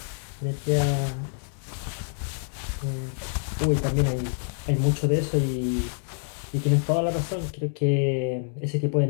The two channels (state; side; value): silent; right; digital silence